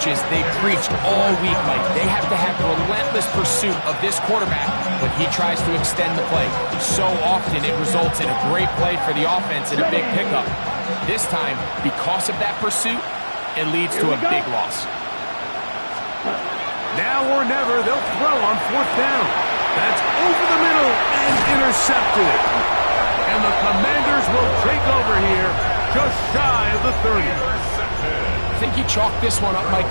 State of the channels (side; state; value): both; inverted; correlation -1.00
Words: they preached all week, Mike. They have to have relentless pursuit of this quarterback when he tries to extend the play. So often it results in a great play for the offense and a big pickup. This time, because of that pursuit, it leads to a big loss. Now or never, they'll throw on 4th down. That's over the middle and intercepted. And the Commanders will take over here just shy of the 30. I think you chalk this one up, Mike,